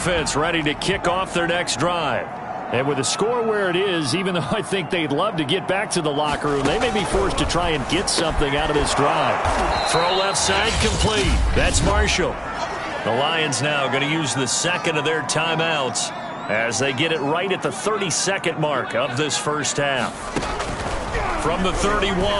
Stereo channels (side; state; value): both; identical; correlation 1.00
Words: ready to kick off their next drive. And with the score where it is, even though I think they'd love to get back to the locker room, they may be forced to try and get something out of this drive. Throw left side complete. That's Marshall. The Lions now going to use the 2nd of their timeouts as they get it right at the 32nd mark of this first half. From the 31,